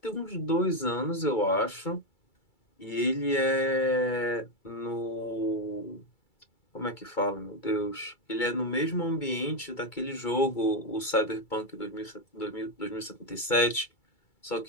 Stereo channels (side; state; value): right; late; 2.3 ms